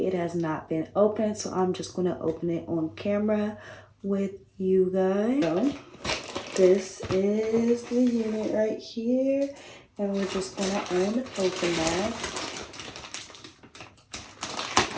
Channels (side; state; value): both; identical; correlation 1.00